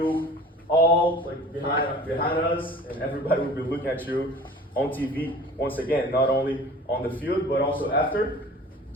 all like behind us, and everybody will be looking at you on TV. Once again, not only on the field, but also after,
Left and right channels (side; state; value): both; normal; correlation 0.43